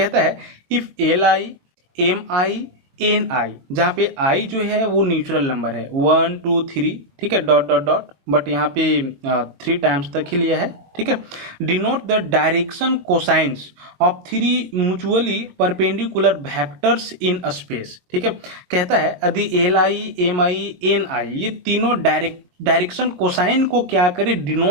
है if L I M I N I, जहाँ पे आई जो है वो न्यूचुरल नंबर है 1 2 3, ठीक है, डॉट डॉट डॉट, बट यहाँ पे 3 टाइम्स तक ही लिया है, ठीक है। Denote the direction cosines of 3 mutually perpendicular vectors in space, ठीक है। कहता है यदि L I M I N I ये तीनों डायरेक्शन कोसाइन को क्या करे,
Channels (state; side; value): late; left; 22 ms